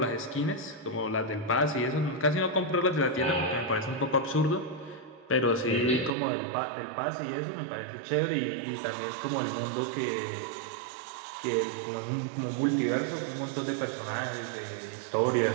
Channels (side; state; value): left; drops out; at 6.1 s